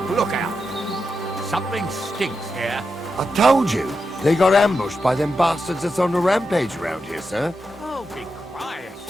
lookout. Something stinks here. I told you, they got ambushed by them bastards that's on the rampage around here, sir. Oh, be quiet.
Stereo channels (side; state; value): both; normal; correlation 0.88